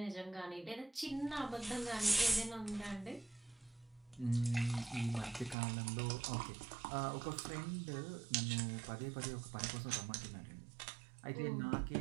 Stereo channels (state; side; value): drops out; left; at 5.6 s